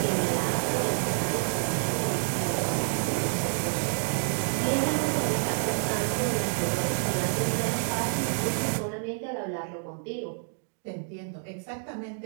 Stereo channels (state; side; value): silent; left; 59 dB below the other